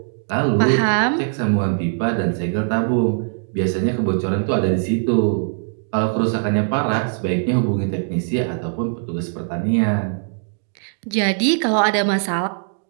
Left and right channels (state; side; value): silent; left; digital silence